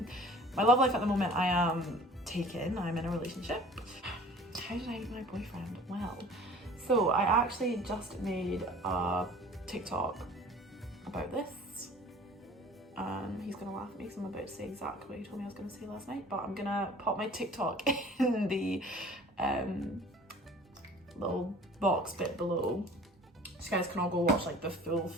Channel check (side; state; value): both; normal; correlation 0.47